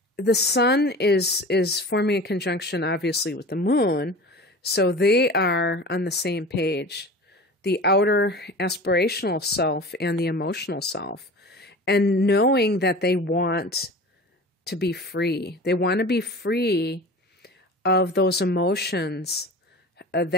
the sun is forming a conjunction, obviously, with the moon, so they are on the same page, the outer aspirational self and the emotional self, and knowing that they want to be free. They want to be free of those emotions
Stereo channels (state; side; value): normal; both; correlation 0.36